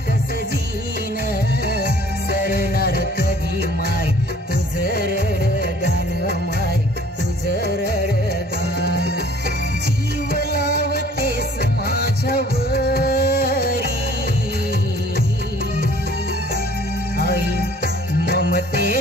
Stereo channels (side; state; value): both; normal; correlation 0.54